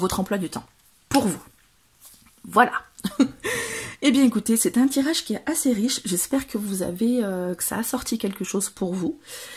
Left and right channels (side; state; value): both; identical; correlation 1.00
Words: emploi du temps, pour vous. Voilà. Eh bien écoutez, c'est un tirage qui est assez riche, j'espère que que ça a sorti quelque chose pour vous.